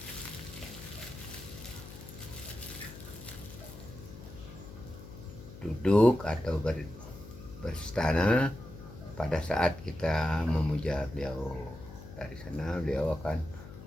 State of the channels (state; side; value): noise; left; hum, 14 dB below the sound